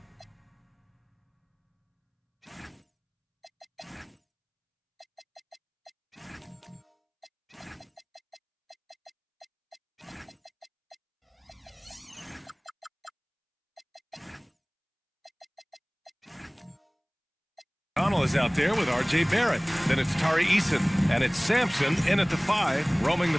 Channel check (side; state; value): both; identical; correlation 1.00